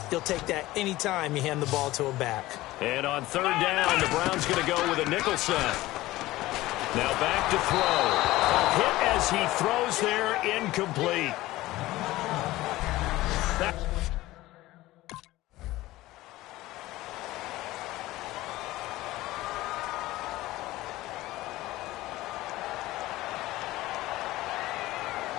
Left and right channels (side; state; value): right; quieter; 17.5 dB